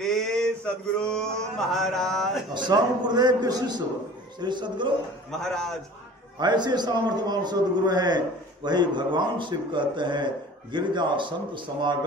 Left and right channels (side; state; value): both; normal; correlation 0.44